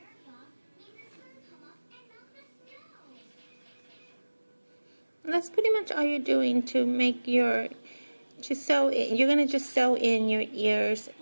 And that's pretty much all you're doing to make your, you're going to just sew in your ears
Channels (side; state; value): both; inverted; correlation -1.00